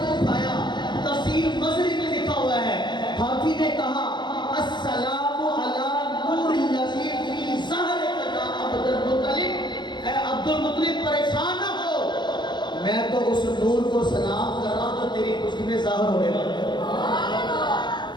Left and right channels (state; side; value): late; right; 0.22 ms